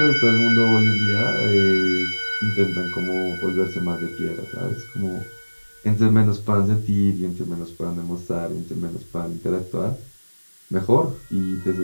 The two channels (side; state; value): both; inverted; correlation -1.00